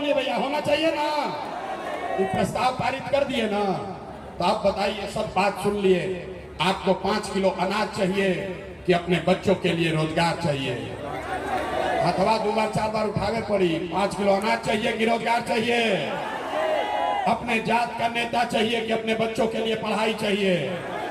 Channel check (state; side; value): identical; both; correlation 1.00